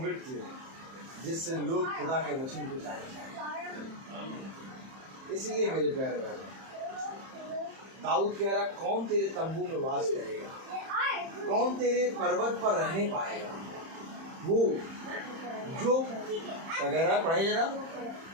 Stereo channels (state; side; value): late; left; 31 ms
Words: जिससे लोग खुदा के वचन को जाने। इसलिए मेरे प्यारे भाई, दाऊद कह रहा कौन तेरे तंबू में वास करेगा, कौन तेरे पर्वत पर रहने पाएगा? वो जो वगैरह पढ़े जरा।